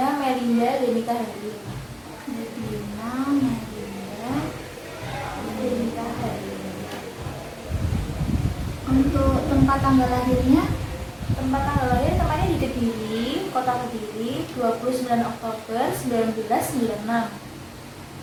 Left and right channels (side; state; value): both; identical; correlation 1.00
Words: Melinda Denika Hari. Lidwina Melinda Denika Hari. Untuk tempat tanggal lahirnya? Tempat tanggal lahir tempatnya di Kediri, Kota Kediri, 29 Oktober 1996.